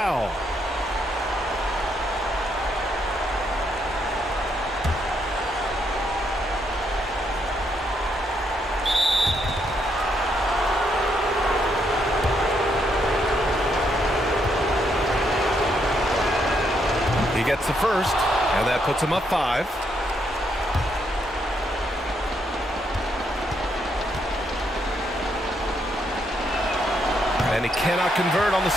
He gets the first, and that puts him up 5. And he cannot convert on the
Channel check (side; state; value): both; normal; correlation 0.76